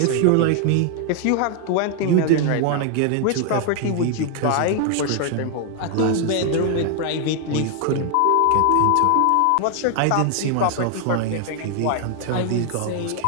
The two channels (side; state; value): both; different; correlation 0.00